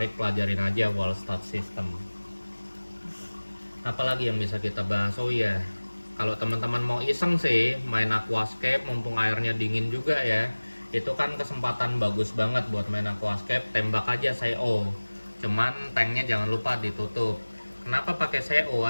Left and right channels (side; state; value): both; inverted; correlation -1.00